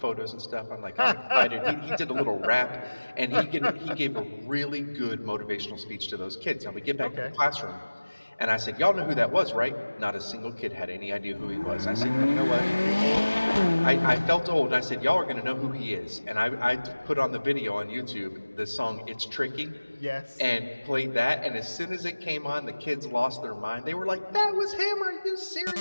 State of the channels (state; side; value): inverted; both; correlation -1.00